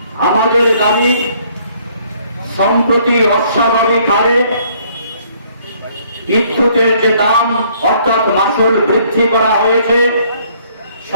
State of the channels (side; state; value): both; inverted; correlation -0.63